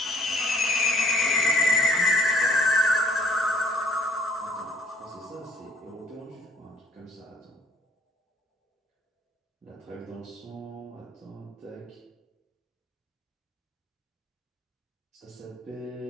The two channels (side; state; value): both; normal; correlation 0.59